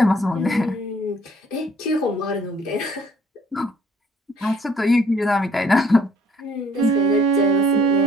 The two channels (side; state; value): both; normal; correlation 0.60